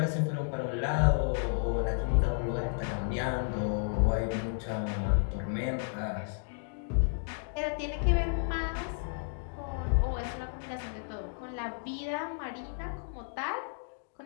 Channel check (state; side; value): silent; right; digital silence